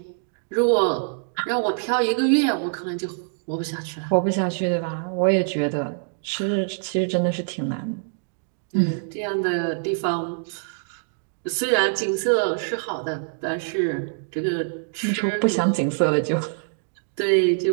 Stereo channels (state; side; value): silent; left; digital silence